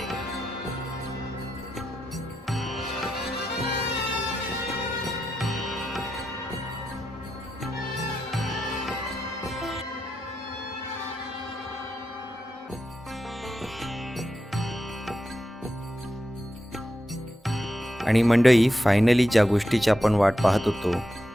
आणि मंडळी, फायनली ज्या गोष्टीची आपण वाट पाहत होतो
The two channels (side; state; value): both; normal; correlation 0.87